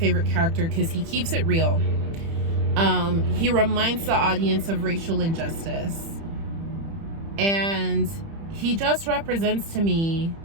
character because he keeps it real. He reminds the audience of racial injustice. And he just represents to me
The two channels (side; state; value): left; late; 30 ms